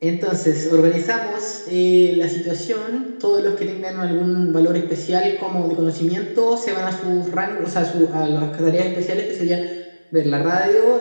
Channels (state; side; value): inverted; both; correlation -1.00